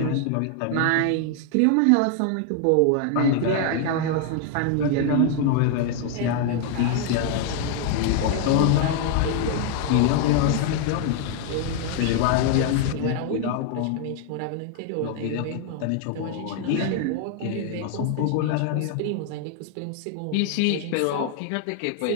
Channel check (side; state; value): both; different; correlation 0.00